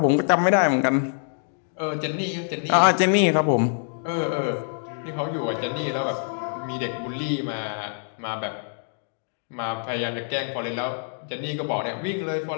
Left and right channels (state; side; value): silent; right; digital silence